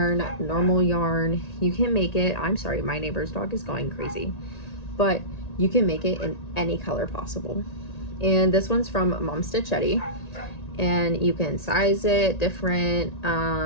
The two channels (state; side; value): late; right; 1.9 ms